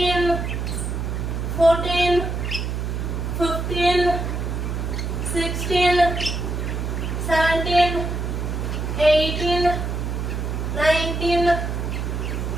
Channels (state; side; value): noise; right; hum, 2 dB below the sound